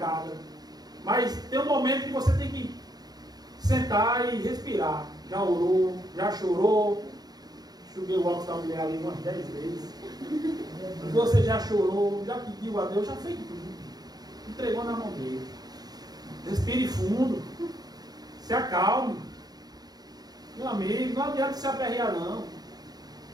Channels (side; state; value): left; late; 0.19 ms